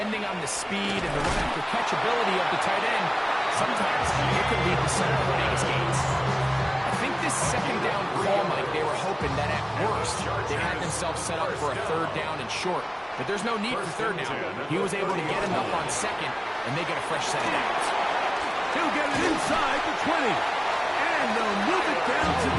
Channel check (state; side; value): identical; both; correlation 1.00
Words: on the speed and the run after catch ability of the tight end, sometimes it can lead to some of the biggest gains. I think this second down call, Mike, they were hoping that at worst they had themselves set up for a third down and short. But there's no need for third down. He was able to get enough on second, and they get a fresh set of downs. He'll get it inside the 20. And they'll move it down to